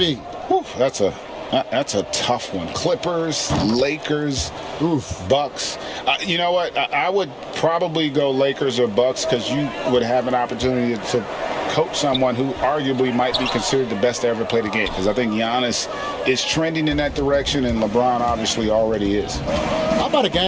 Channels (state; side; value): identical; both; correlation 1.00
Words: Whew, that's a tough one. Clippers, Lakers, Bucks. You know what? I would probably go Lakers or Bucks, because you would have an opportunity to coach someone who arguably might be considered the best to ever play the game, because I think Giannis is trending in that direction, and LeBron obviously already is. How about a